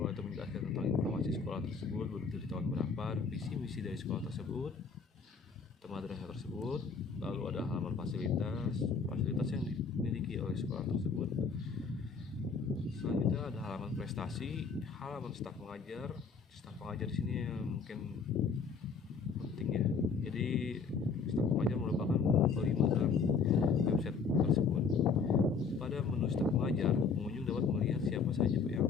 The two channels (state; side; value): quieter; right; 5.2 dB